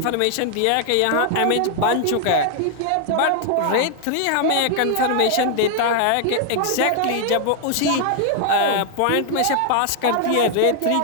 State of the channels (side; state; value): both; different; correlation 0.00